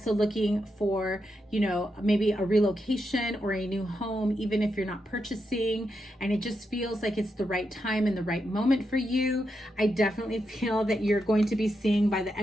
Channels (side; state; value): both; normal; correlation 0.85